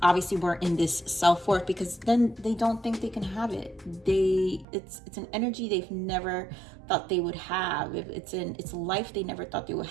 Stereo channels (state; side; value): drops out; left; at 4.7 s